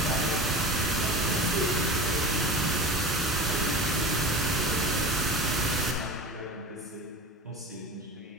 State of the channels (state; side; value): normal; both; correlation 0.32